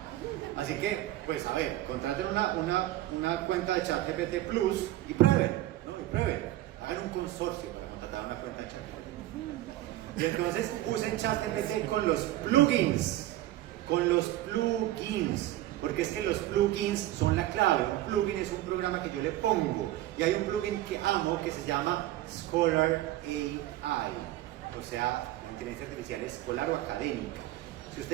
Así que, pues, a ver, contraten una cuenta de ChatGPT Plus y prueben, ¿no? Y prueben. Hagan un consorcio para contratar una cuenta de ChatGPT. Y entonces, usen ChatGPT con los plugins. Con los plugins. Porque es que los plugins son la clave. Un plugin es un programa que yo le pongo. Y hay un plugin que amo que se llama Scholar AI. O sea, la inteligencia artificial escolar o académica. Si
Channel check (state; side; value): quieter; left; 15.0 dB